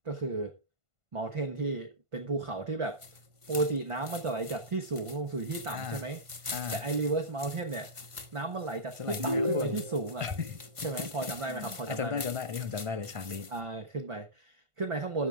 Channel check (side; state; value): left; late; 1.5 ms